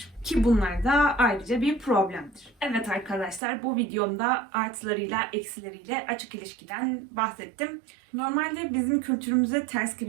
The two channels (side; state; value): left; drops out; at 3.4 s